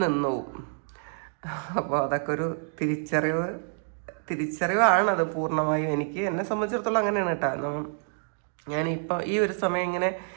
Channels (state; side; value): silent; left; digital silence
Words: നിന്നുപോകും. അപ്പോൾ അതൊക്കെ ഒരു തിരിച്ചറിവാണത് പൂർണ്ണമായും. എന്നെ സംബന്ധിച്ചിടത്തോളം അങ്ങനെയാണ് കേട്ടോ. ഞാനിപ്പോൾ ഈ ഒരു സമയം ഇങ്ങനെ